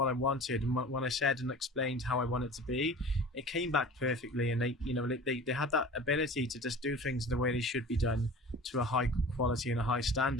I wanted, and when I said and explained how I want it to be, it came back perfectly. And they had that ability to just do things the way they should be done, to a high quality and a high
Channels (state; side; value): normal; both; correlation 0.40